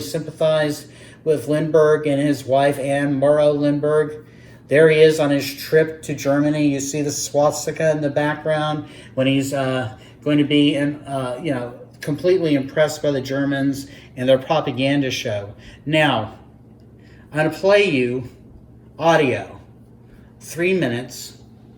with Lindbergh and his wife, Anne Morrow Lindbergh. There he is on his trip to Germany. You see the swastika in the background when he's going to be, completely impressed by the Germans and their propaganda show. Now, I'm going to play you audio, 3 minutes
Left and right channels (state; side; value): identical; both; correlation 1.00